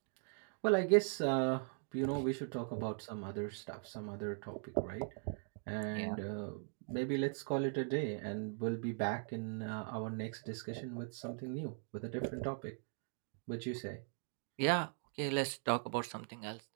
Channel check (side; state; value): left; silent; 51 dB below the other